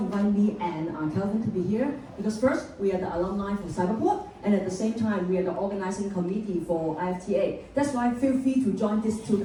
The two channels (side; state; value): both; identical; correlation 1.00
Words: me and Kelvin to be here? Because first, we are the alumni for Cyberport, and at the same time, we are the organizing committee for IFTA. That's why feel free to join these two